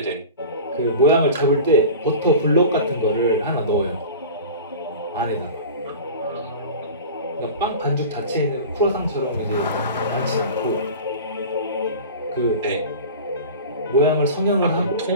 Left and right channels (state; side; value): inverted; both; correlation -0.35